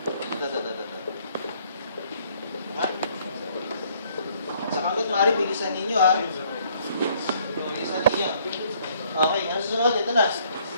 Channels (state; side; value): inverted; both; correlation -0.63